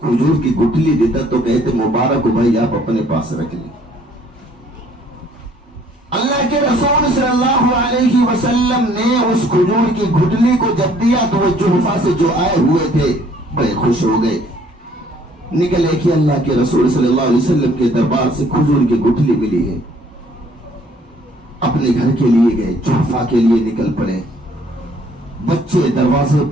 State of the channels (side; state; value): both; normal; correlation 0.60